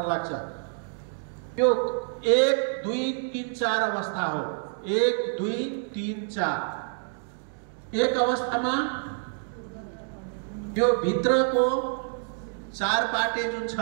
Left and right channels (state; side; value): silent; left; 59 dB below the other